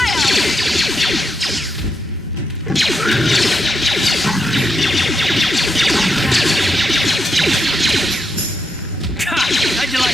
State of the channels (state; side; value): normal; both; correlation 0.82